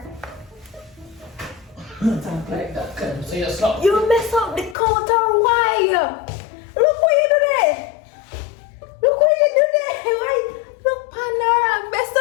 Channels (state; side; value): drops out; right; at 4.8 s